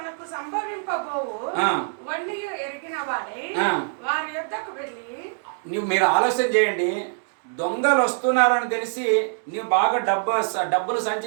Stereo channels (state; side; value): silent; left; digital silence